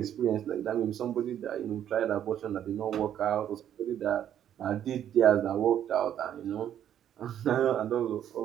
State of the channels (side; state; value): left; quieter; 10.3 dB